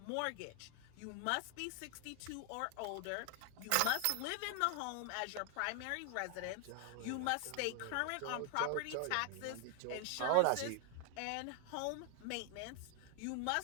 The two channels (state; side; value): different; both; correlation 0.00